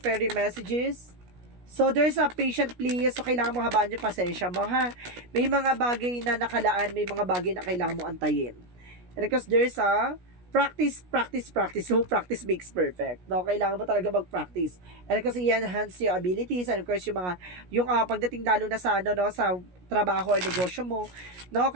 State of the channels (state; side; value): late; left; 17 ms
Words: messages, so, there's a patient please. So, kailangan mo habaan yung pasensya mo, ha? May mga bagay na nakalaan, may mga bagay na kailangan mo antayin. And because there's a practice, practice, practice. So, practice makes perfect. No, kailangan mo talaga mag-practice. And kasi i-enhance yung abilities and of course yung pagdating lalo na sa ano no, sa trabaho or negosyo mo, no,